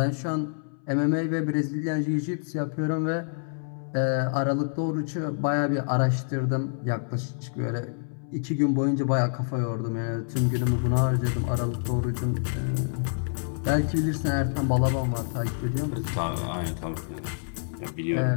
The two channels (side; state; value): right; silent; 60 dB below the other